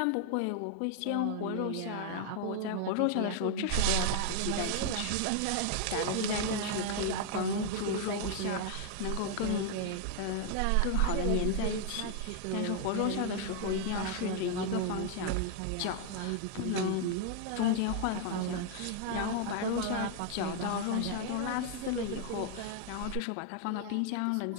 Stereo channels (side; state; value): both; different; correlation 0.00